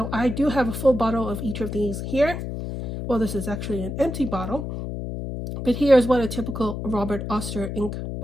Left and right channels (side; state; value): left; noise; hum, 6 dB below the sound